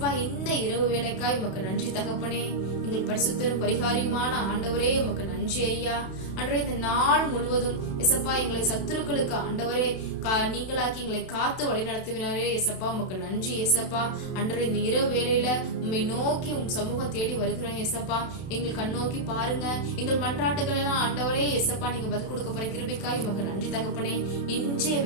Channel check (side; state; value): right; late; 32 ms